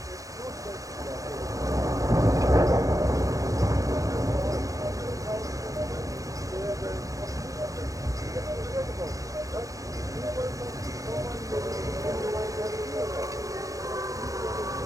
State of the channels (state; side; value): late; left; 0.16 ms